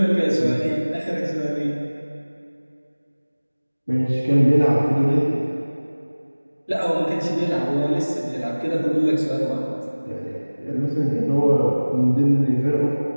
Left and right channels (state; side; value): inverted; both; correlation -1.00